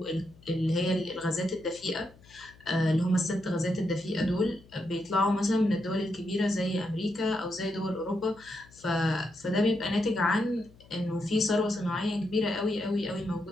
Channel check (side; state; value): left; noise; hum, 25 dB below the sound